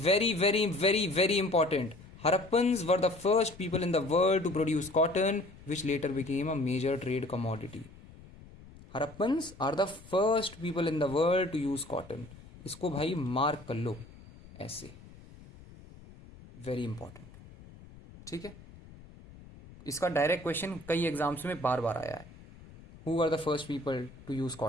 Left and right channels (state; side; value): noise; left; rumble, 20 dB below the sound